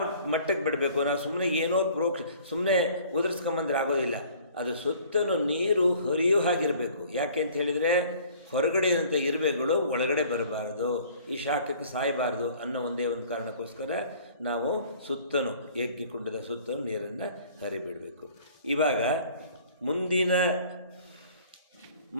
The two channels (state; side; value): inverted; both; correlation -0.52